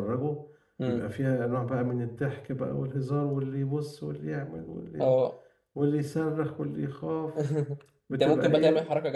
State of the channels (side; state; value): both; identical; correlation 1.00